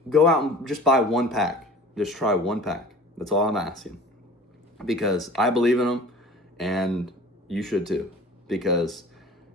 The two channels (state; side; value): normal; both; correlation 0.43